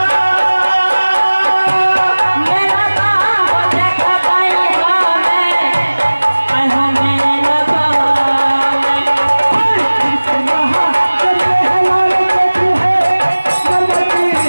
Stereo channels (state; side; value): inverted; both; correlation -1.00